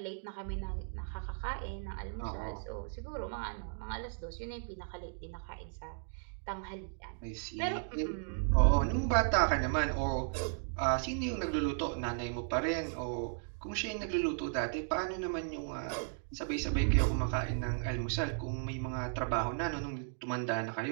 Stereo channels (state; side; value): silent; left; digital silence